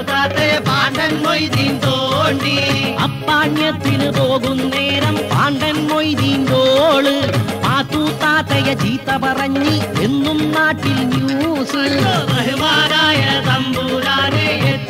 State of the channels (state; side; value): identical; both; correlation 1.00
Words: താത്തയെ പാണ്ടൻ മൊയ്തീൻ തോണ്ടി. അപ്പാണ്യത്തിന് പോകും നേരം പാണ്ടൻ മൊയ്തീൻ തോള് പാത്തു താത്തയ ചീത്ത പറഞ്ഞി എന്നും നാട്ടിൽ ന്യൂസ്. ബഹുമാനായ തമ്പൂരാനെ